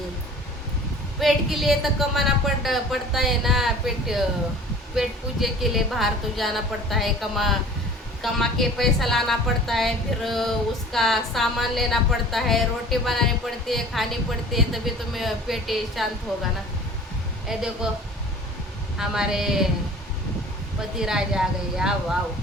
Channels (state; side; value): normal; both; correlation 0.45